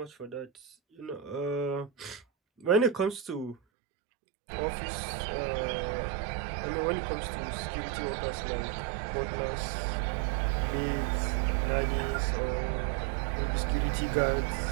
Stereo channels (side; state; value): left; drops out; at 3.6 s